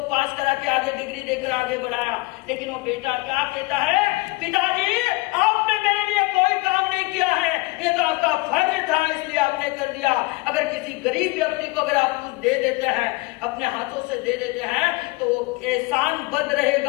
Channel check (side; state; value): right; quieter; 23.9 dB